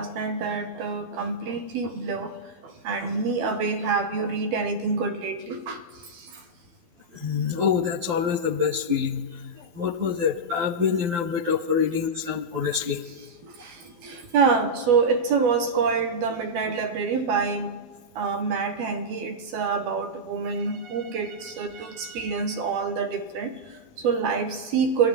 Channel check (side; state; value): left; late; 12 ms